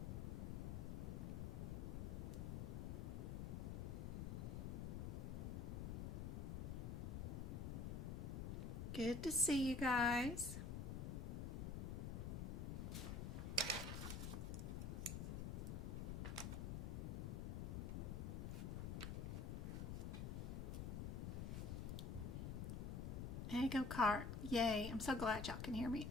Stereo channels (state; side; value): noise; left; rumble, 2 dB below the sound